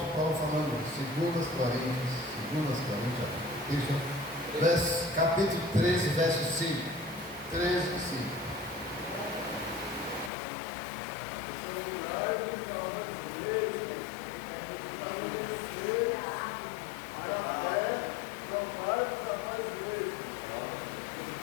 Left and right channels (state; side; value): drops out; right; at 10.3 s